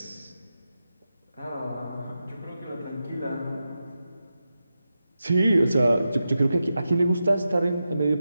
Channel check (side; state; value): both; inverted; correlation -0.91